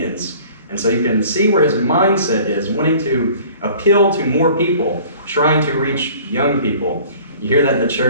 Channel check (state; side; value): inverted; both; correlation -0.49